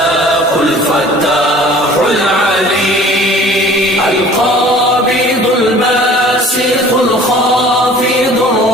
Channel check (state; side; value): normal; both; correlation 0.48